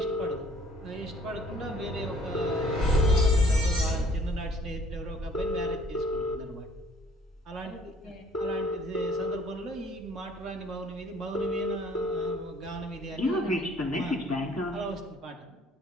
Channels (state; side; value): normal; both; correlation 0.57